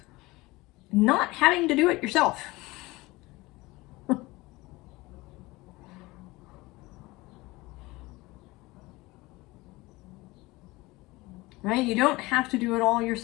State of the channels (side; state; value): right; quieter; 21.3 dB